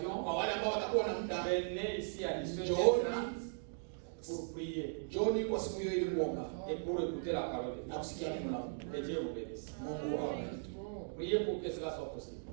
Kwa wale ambao watakuwa na muda, venez ici à 18h30 pour prier John kwa siku hiyo ili kuomba et pour écouter la parole de na Dieu. kusikia neno la Mungu. Que Dieu vous bénisse. Mungu awabariki. Priez pour que cela soit possible.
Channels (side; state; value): left; silent; digital silence